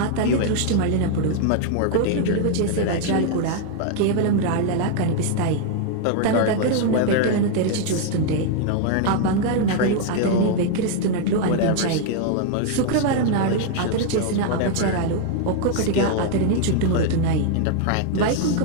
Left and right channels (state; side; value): different; both; correlation 0.00